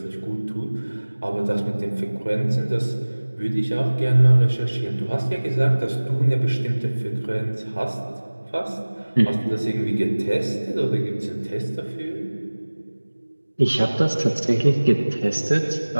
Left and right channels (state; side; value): inverted; both; correlation -1.00